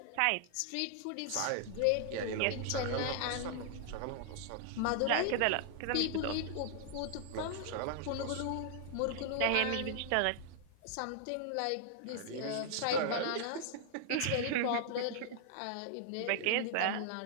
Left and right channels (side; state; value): both; different; correlation 0.00